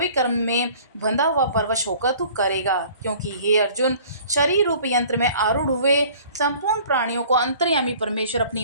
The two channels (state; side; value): inverted; both; correlation -0.50